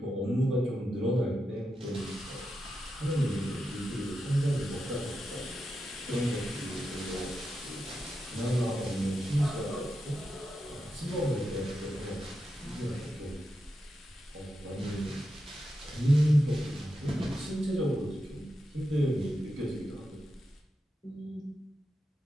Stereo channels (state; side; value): normal; both; correlation 0.88